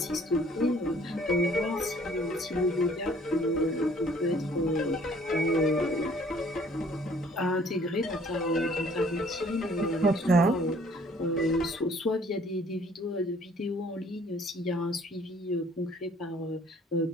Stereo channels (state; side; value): normal; both; correlation 0.57